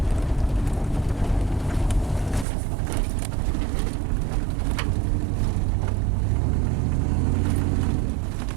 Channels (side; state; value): left; drops out; at 2.5 s